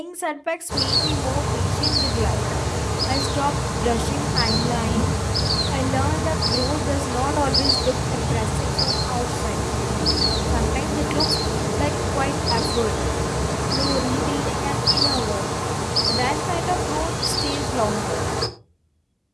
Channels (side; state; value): both; identical; correlation 1.00